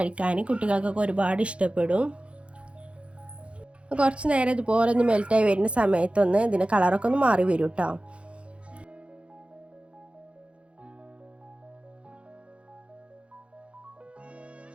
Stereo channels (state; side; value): late; left; 0.060 ms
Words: കുട്ടികൾക്കൊക്കെ ഒരുപാട് ഇഷ്ടപ്പെടും. കുറച്ച് നേരം ഇതുപോലെ ഒന്ന് മെൽറ്റായി വരുന്ന സമയത്തൊന്ന് ഇതിൻ്റെ കളറൊക്കെ ഒന്ന് മാറി വരും കേട്ടോ.